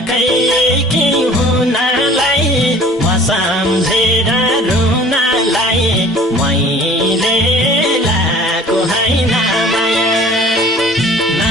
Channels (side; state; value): both; normal; correlation 0.49